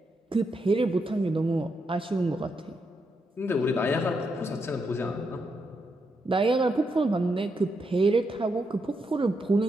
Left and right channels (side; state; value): both; normal; correlation 0.82